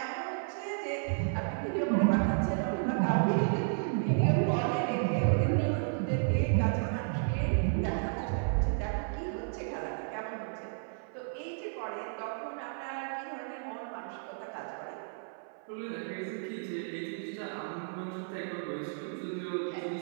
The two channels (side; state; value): left; silent; 56 dB below the other